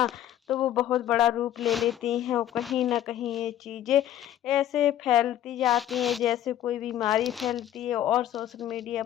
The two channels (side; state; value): right; quieter; 11.9 dB